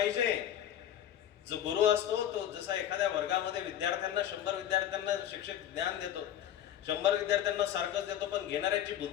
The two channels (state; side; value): quieter; right; 10.9 dB